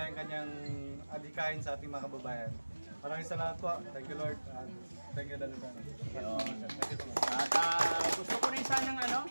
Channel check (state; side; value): inverted; both; correlation -1.00